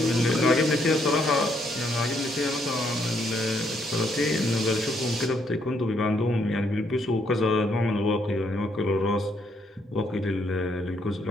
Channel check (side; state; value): both; normal; correlation 0.72